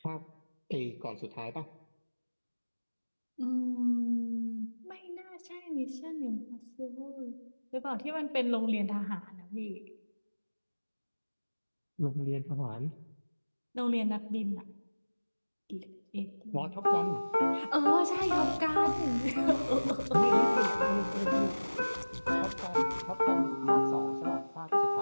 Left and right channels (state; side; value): inverted; both; correlation -1.00